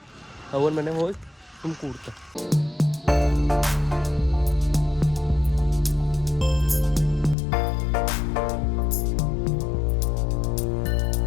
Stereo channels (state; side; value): drops out; right; at 7.4 s